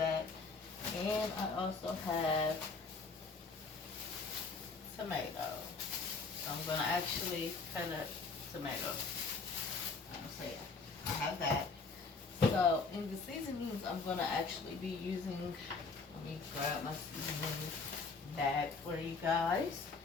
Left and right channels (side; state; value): right; quieter; 4.3 dB